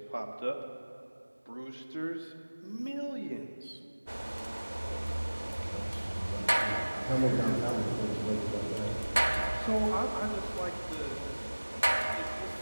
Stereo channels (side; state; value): both; inverted; correlation -1.00